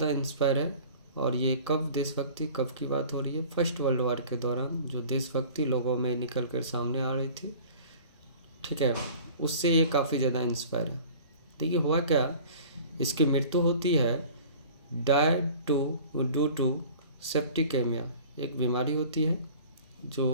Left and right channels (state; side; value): inverted; both; correlation -0.44